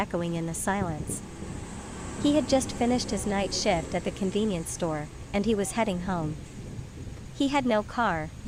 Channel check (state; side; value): identical; both; correlation 1.00